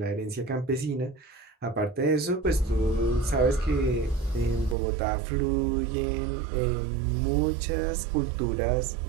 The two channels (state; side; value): drops out; left; at 4.8 s